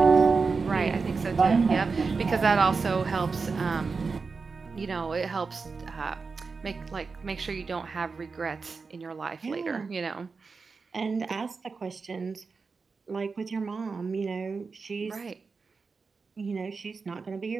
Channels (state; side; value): quieter; left; 4.7 dB